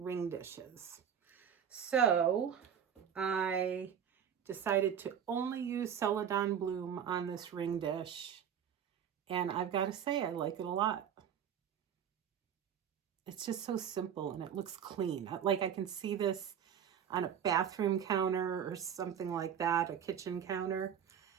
ring dishes. So I decided to only use Celadon Bloom on this ring dish, and I've got to say I like it a lot. It's just so simple and it looks clean. Like I can see this on a bathroom counter or something like that, a kitchen counter,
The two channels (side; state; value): left; quieter; 8.6 dB